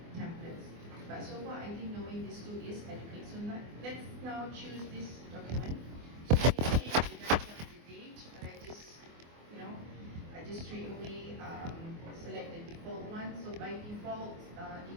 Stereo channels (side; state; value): left; late; 24 ms